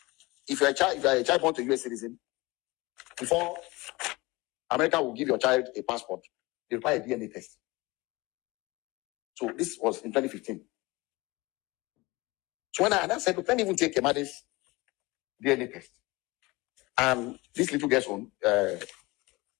If you're a child born to a US citizen, before America will give your child a passport, they require a DNA test. So this was in 2015. So when I said, look, let me even take Imade's DNA test and this little girl's own,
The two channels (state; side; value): quieter; right; 22.6 dB